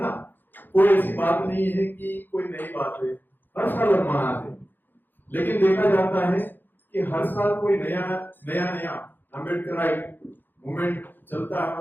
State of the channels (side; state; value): right; late; 0.091 ms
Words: ना। कोई ऐसी बात नहीं है कि कोई नई बात है, हर साल हम मनाते हैं। लेकिन देखा जाता है कि हर साल कोई नया अम्बेडकराइट मूवमेंट चलता है